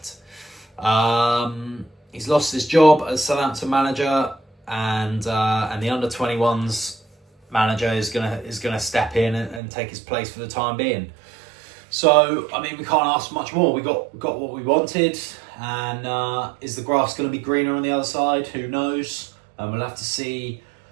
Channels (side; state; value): left; drops out; at 9.6 s